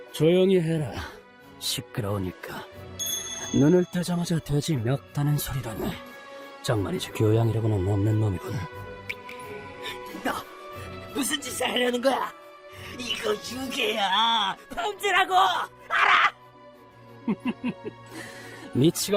조용히 해라. 시끄러우니까. 눈을 뜨자마자 돼지 멱다는 소리라네. 정말이지 교양이라고는 없는 놈이군. 너 무슨 짓을 하려는 거야? 이거 유괴야. 범죄라고. 알아?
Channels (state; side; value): identical; both; correlation 1.00